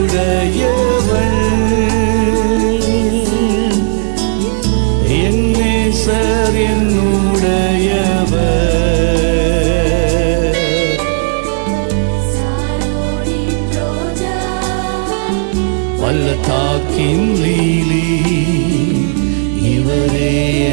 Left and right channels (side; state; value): left; silent; digital silence